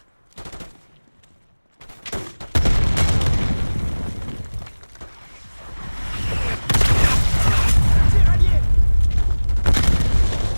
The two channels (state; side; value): inverted; both; correlation -1.00